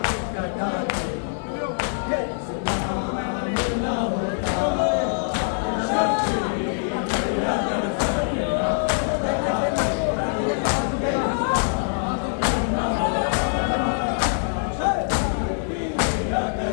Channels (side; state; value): right; silent; 57 dB below the other